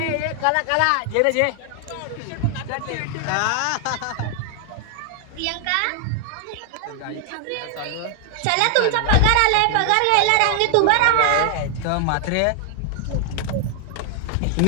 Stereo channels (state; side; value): different; both; correlation 0.00